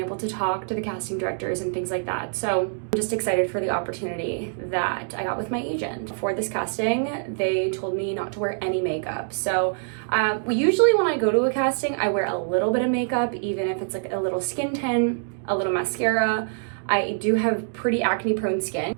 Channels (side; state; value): left; silent; digital silence